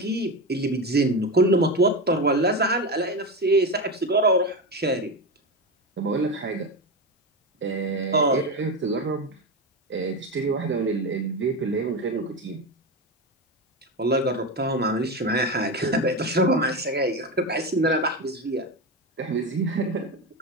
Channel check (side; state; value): both; normal; correlation 0.18